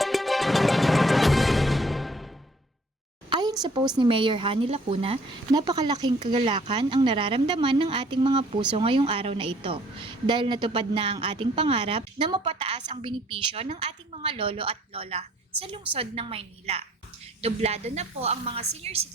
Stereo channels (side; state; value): both; normal; correlation 0.60